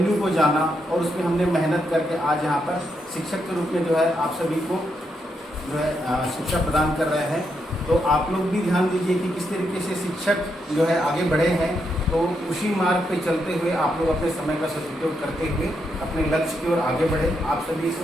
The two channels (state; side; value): normal; both; correlation 0.80